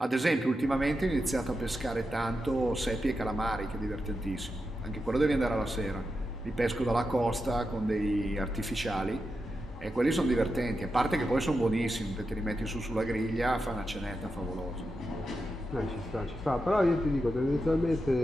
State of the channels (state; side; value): normal; both; correlation 0.88